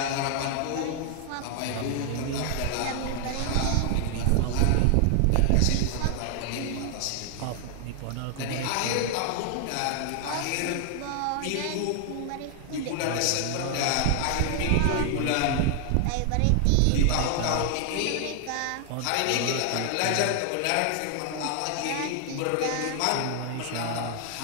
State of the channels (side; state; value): both; different; correlation 0.00